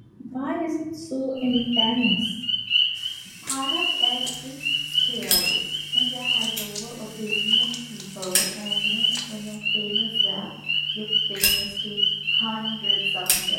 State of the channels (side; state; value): both; identical; correlation 1.00